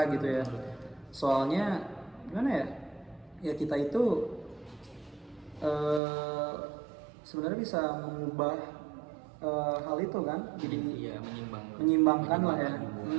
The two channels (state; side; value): drops out; left; at 6.0 s